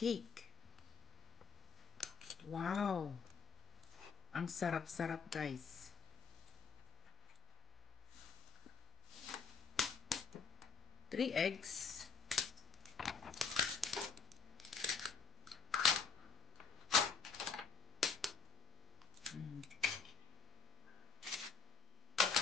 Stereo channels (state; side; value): quieter; right; 5.6 dB